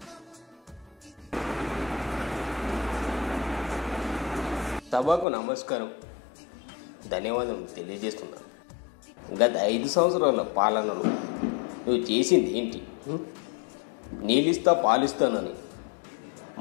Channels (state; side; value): drops out; right; at 5.2 s